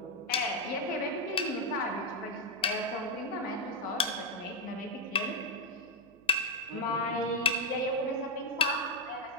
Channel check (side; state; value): right; noise; hum, 27 dB below the sound